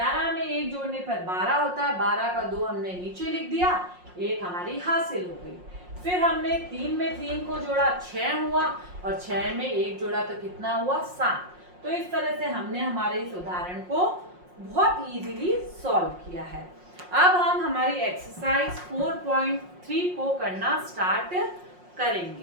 में 1 जोड़ने पर 12 होता है। 12 का 2 हमने नीचे लिख दिया, 1 हमारी हासिल हो गई। फिर हमने 3 में 3 को जोड़ा 6 हुआ, और 6 में 1 जोड़ा तो कितना हुआ 7। तो इस तरह से हमने हमारे इस उदाहरण को बहुत इजीली सॉल्व किया है। अब हम हमारी एक्सरसाइज 4.3 को करना स्टार्ट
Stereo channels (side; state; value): left; late; 5.6 ms